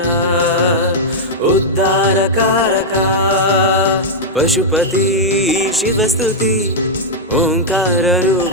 ಉದ್ಧಾರಕಾರಕ ಪಶುಪತಿ ಶಿವಸ್ತುತಿ ಓಂಕಾರ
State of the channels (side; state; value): both; normal; correlation -0.04